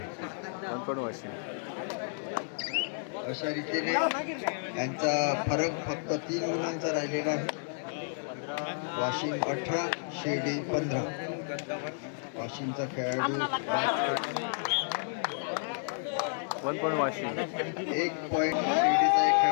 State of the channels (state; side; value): silent; right; digital silence